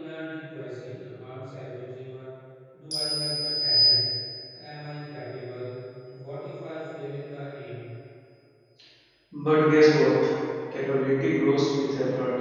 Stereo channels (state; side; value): identical; both; correlation 1.00